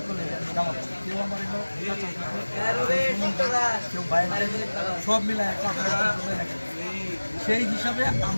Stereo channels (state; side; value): inverted; both; correlation -1.00